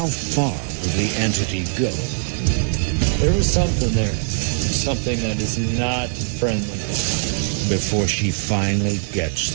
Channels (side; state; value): left; silent; digital silence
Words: far will the entity go? There is something there. Something that is not friendly. Before she finally gets